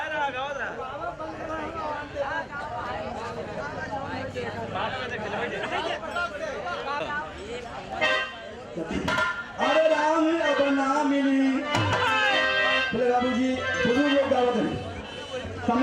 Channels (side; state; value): both; identical; correlation 1.00